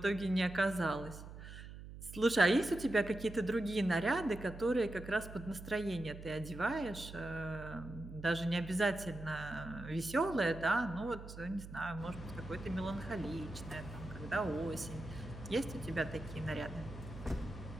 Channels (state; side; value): noise; right; hum, 12 dB below the sound